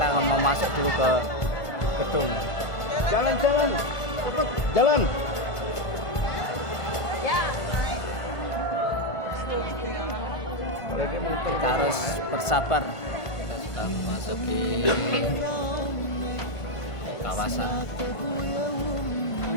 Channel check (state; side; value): late; right; 1.5 ms